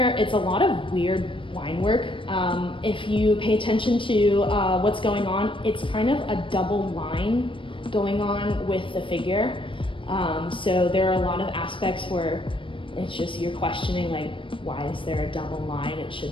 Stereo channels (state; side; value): late; right; 0.25 ms